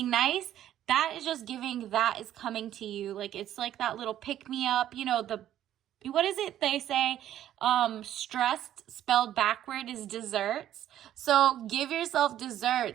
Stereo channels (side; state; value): left; quieter; 11.8 dB